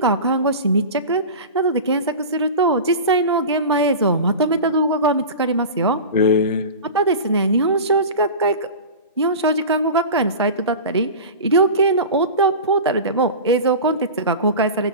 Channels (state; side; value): inverted; both; correlation -0.30